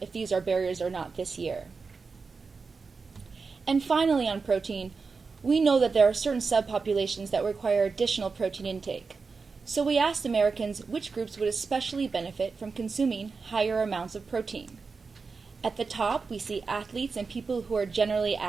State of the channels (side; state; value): left; quieter; 4.7 dB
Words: if these are barriers or not this year. And finally, on protein, we know that there are certain subpopulations that require additional protein intake. So we asked Americans which groups would especially benefit from consuming higher amounts of protein. At the top, we see athletes and people who are generally